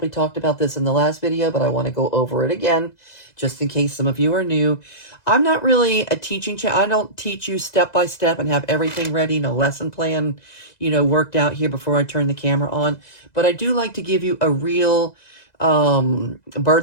talked about this in the last video, but I want to go over it again, just in case some of you are new. I'm not really a teaching channel. I don't teach you step by step and have everything ready, no lesson plan, you know, worked out here before I turn the camera on. But I do like to give you a real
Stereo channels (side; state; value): right; late; 2.0 ms